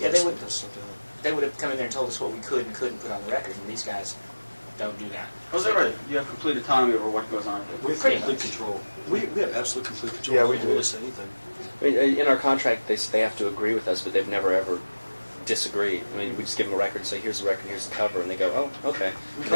they would- let stuff down. they would have come in there and told us what we could and couldn't put on the record, and these guys don't do that. Oh, is that right? You have complete autonomy over what goes on. We have Pretty complete much. control. We have absolute complete control. Yeah, we don't do. really say anything. I mean, in our contract, they have to agree with us, but they've never ever disagreed. I mean, we just give them a record and say, here's the record, here's the cover, and they go, oh, okay. And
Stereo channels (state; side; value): inverted; both; correlation -1.00